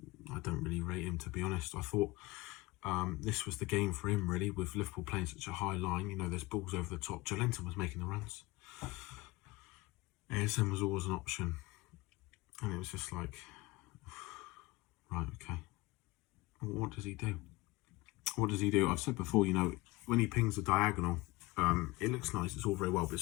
I don't really rate him, to be honest. I thought this was the game for him, really, with Liverpool playing such a high line. You know, there's balls over the top. Joelinton was making the runs. ASM was always an option. And it was just like, right, okay. What does he do? What does he do? I've said before, you know, when he pings the diagonal, it looks nice, it's all very well, but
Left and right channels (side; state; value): right; quieter; 21.3 dB